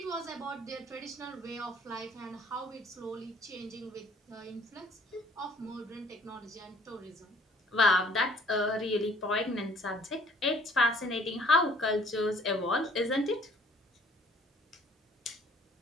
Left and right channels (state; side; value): normal; both; correlation 0.57